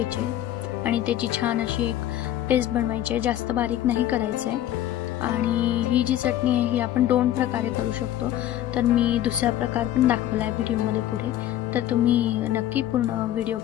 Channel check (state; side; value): quieter; right; 12.6 dB